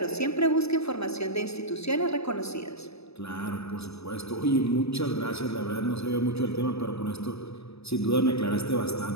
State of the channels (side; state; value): right; late; 0.79 ms